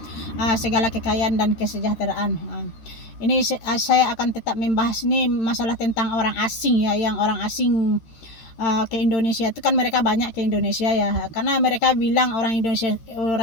segala kekayaan dan kesejahteraan. Ini saya akan tetap membahas ini masalah tentang orang asing ya, yang orang asing ke Indonesia itu kan mereka banyak ke Indonesia ya, karena mereka bilang orang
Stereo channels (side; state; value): right; late; 13 ms